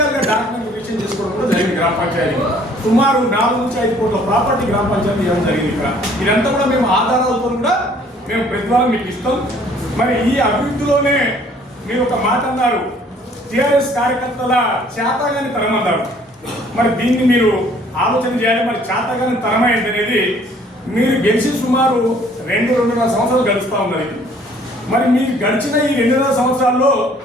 డాక్యుమెంట్ రిజిస్టర్ చేసుకోవడం కూడా జరిగింది. గ్రామ పంచాయతీ సుమారు 4 నుంచి 5 కోట్ల ప్రాపర్టీ గ్రామ పంచాయతీ ఇవ్వడం జరిగింది. ఇక్కడ ఇదంతా కూడా మేము ఆధారాలతో కూడా మేము ప్రతివారం మీకు ఇస్తాం. మరి ఈ అభివృద్ధిలోనే మీరు ఒక మాట అన్నారు, టీఆర్ఎస్ కార్యకర్తల చేతగాని తరం అన్నారు. మరి దీన్ని మీరు ఆలోచన చేయాలి. మరి చేతగాని తరమైంది అనేది మీరు గెలిచి సుమారు 2-2.5 సంవత్సరాలు గడుస్తూ ఉన్నది. మరి మీరు గడిచిన ఈ 2.5 సంవత్సరాల్లో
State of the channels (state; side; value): normal; both; correlation 0.58